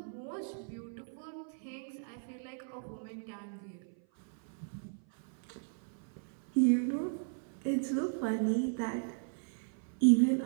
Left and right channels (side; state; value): left; silent; 54 dB below the other